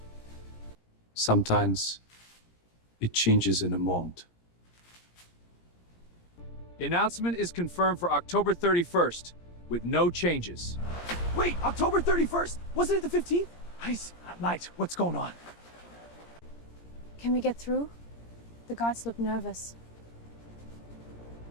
Sometimes it changes in a moment. The announcement is confirmed for October 31st, with no changes. Wait, October 31st? Wasn't it the 15th? Light, what's going on? Can we get through? The guards look nervous.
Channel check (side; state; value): right; late; 17 ms